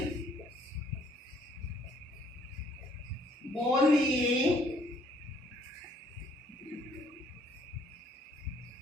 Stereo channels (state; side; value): normal; both; correlation 0.63